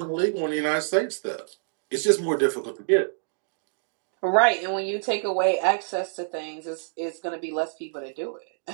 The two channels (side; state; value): left; silent; digital silence